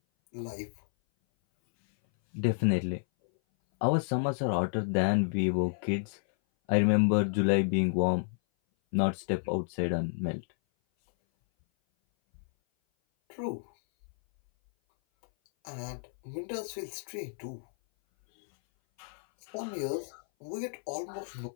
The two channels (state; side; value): silent; right; 57 dB below the other